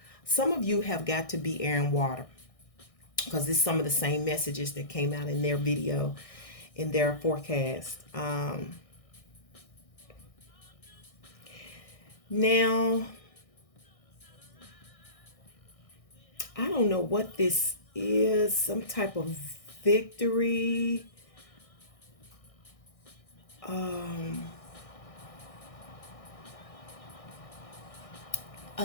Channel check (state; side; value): late; right; 1.6 ms